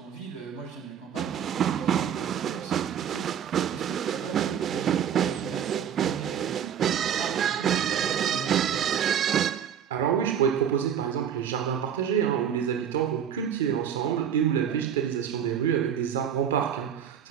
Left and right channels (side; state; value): left; quieter; 8.7 dB